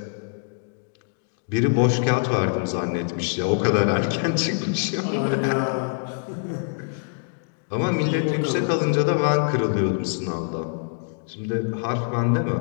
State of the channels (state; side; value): silent; right; digital silence